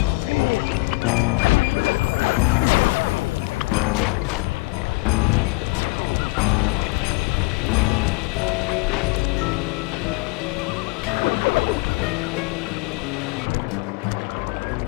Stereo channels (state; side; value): quieter; right; 26.7 dB